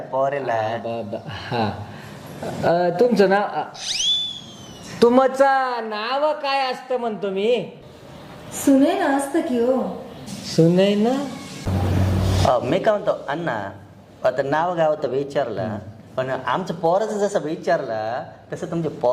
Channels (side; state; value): both; identical; correlation 1.00